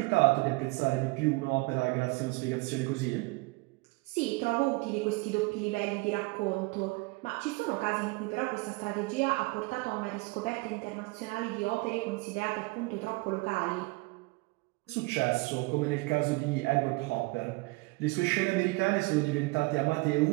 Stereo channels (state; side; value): quieter; left; 25.5 dB